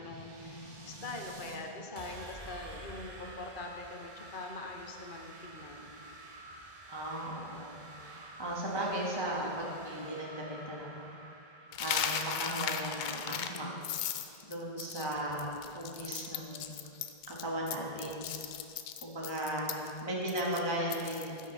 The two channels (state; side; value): late; right; 2.2 ms